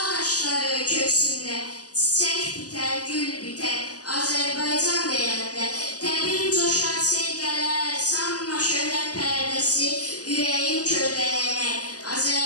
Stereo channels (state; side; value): late; right; 0.67 ms